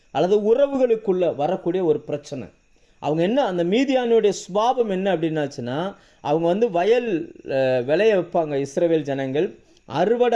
அல்லது உறவுகளுக்குள்ள வரக்கூடிய ஒரு பிரச்சனை. அவங்க என்ன, அந்த மீதியானுடைய சுபாவம் என்ன அப்படின்னாச்சுன்னா, அவங்க வயல் விளைய வைப்பாங்க. இஸ்ரவேல் ஜனங்கள்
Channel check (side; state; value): both; identical; correlation 1.00